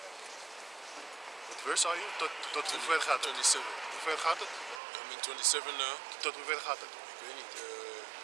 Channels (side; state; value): left; drops out; at 4.8 s